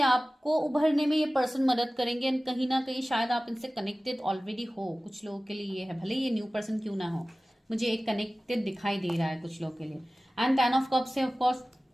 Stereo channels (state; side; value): normal; both; correlation 0.97